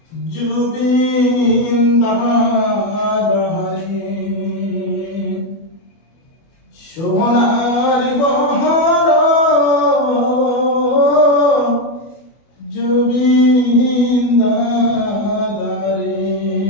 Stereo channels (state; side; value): late; right; 24 ms